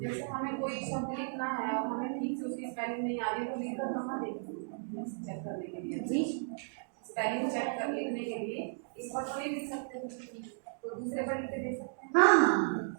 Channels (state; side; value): silent; left; digital silence